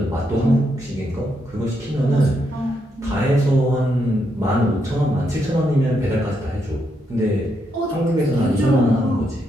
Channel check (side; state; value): both; normal; correlation 0.79